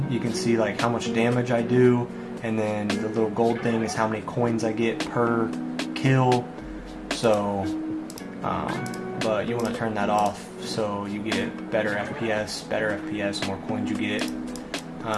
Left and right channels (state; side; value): identical; both; correlation 1.00